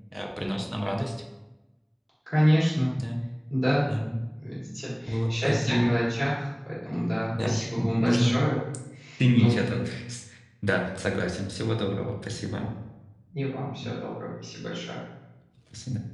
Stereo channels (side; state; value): both; identical; correlation 1.00